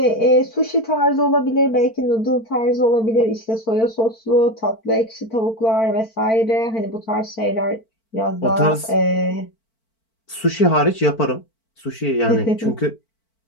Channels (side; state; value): right; late; 4.5 ms